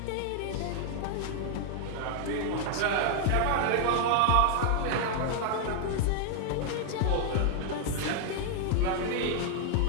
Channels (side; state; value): both; different; correlation 0.00